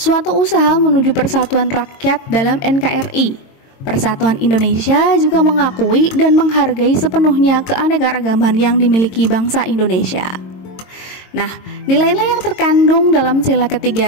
usaha menuju persatuan rakyat dalam NKRI, Persatuan Indonesia juga mengakui dan menghargai sepenuhnya keanekaragaman yang dimiliki bangsa Indonesia. Nah, nilai-nilai yang terkandung dalam sila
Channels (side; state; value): right; late; 22 ms